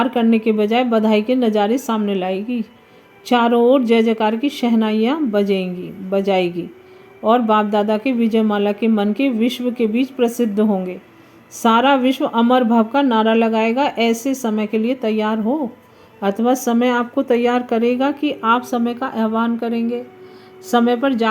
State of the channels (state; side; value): identical; both; correlation 1.00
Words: करने के बजाय बधाई के नज़ारे सामने लाएगी। चारों ओर जय जयकार की शहनाइयाँ बजाएगी और बाप दादा के विजयमाला के मन के विश्व के बीच प्रसिद्ध होंगे। सारा विश्व अमर भव का नारा लगाएगा। ऐसे समय के लिए तैयार हो, अथवा समय आपको तैयार करेगा कि आप समय का आह्वान करेंगे। समय पर